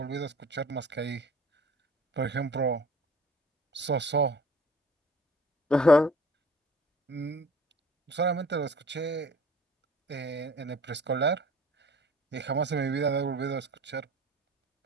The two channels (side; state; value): both; normal; correlation 0.48